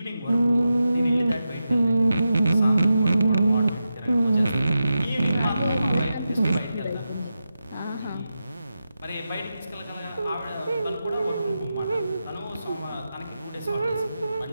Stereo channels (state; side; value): inverted; both; correlation -0.90